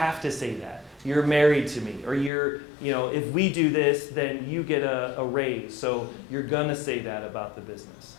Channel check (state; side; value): drops out; right; at 2.3 s